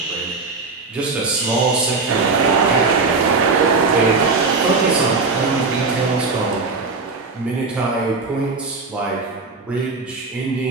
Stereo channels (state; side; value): quieter; left; 4.1 dB